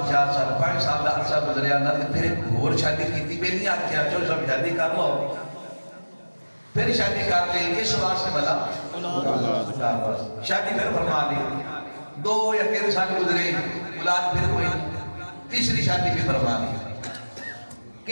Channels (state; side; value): inverted; both; correlation -1.00